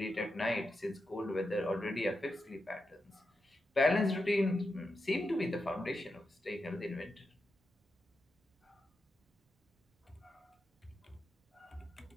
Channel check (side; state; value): both; normal; correlation 0.87